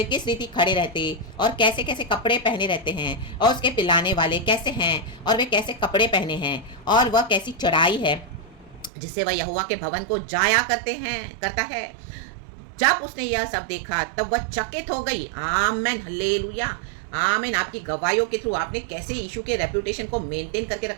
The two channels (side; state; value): left; drops out; at 8.9 s